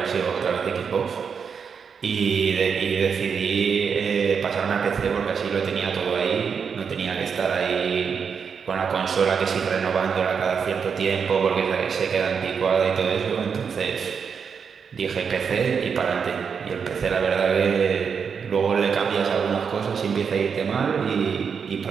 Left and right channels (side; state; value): left; quieter; 6.4 dB